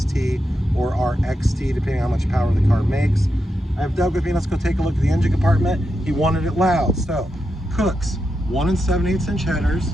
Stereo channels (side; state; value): both; normal; correlation 0.86